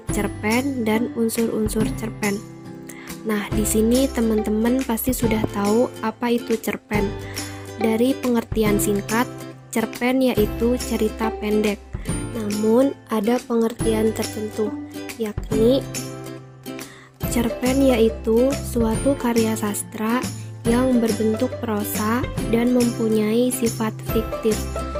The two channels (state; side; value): identical; both; correlation 1.00